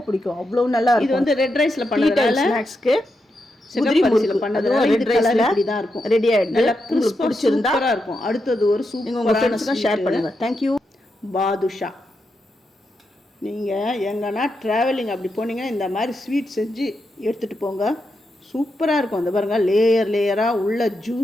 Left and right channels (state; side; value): normal; both; correlation 0.85